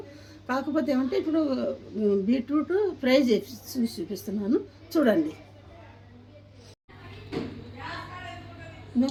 కాకపోతే ఏమంటే ఇప్పుడు బీట్రూట్ ఫ్రై చేసి చూపిస్తున్నాను చూడండి.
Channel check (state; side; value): identical; both; correlation 1.00